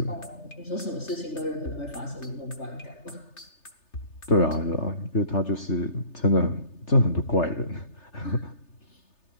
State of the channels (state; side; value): late; right; 3.3 ms